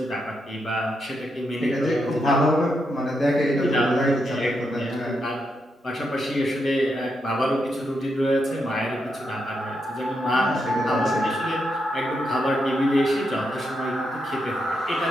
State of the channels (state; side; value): normal; both; correlation 0.82